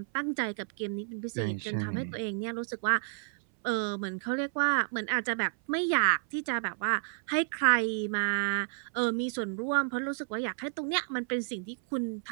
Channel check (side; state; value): left; silent; 57 dB below the other